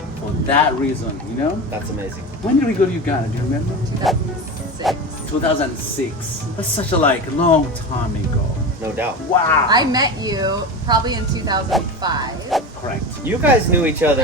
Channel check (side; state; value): both; normal; correlation 0.26